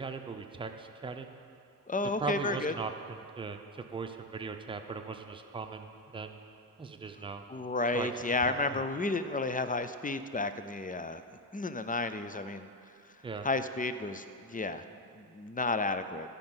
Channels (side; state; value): both; normal; correlation 0.11